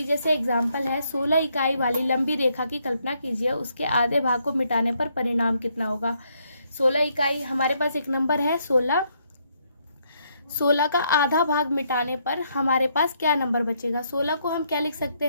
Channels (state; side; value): inverted; both; correlation -0.73